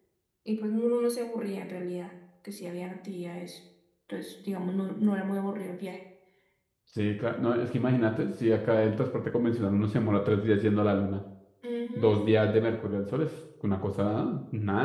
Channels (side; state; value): both; identical; correlation 1.00